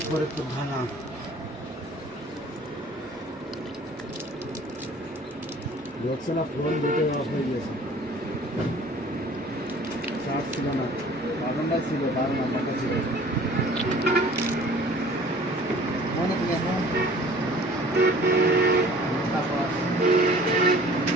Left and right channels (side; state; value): both; normal; correlation 0.49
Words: ফরিদপুর থানা। দেখছে না ফোন দুটো অফ হয়ে গেছে, চার্জ ছিল না, বাটনটা ছিল, তার নাম্বারটা ছিল। মনে থেকে এখন